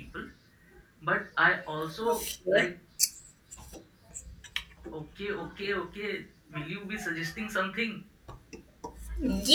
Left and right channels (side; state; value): both; identical; correlation 1.00